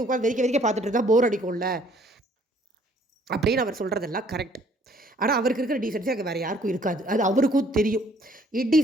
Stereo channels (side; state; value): both; normal; correlation 0.61